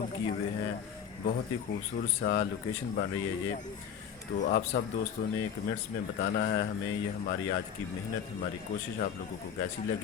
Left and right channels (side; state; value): right; quieter; 8.0 dB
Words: किए हुए हैं। बहुत ही खूबसूरत सा लोकेशन बन रही है ये। तो आप सब दोस्तों ने कमेंट्स में बताना है हमें ये हमारी आज की मेहनत, हमारी कोशिश आप लोगों को कैसी